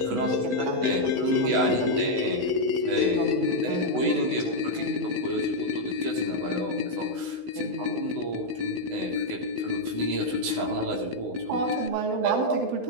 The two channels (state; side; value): late; left; 16 ms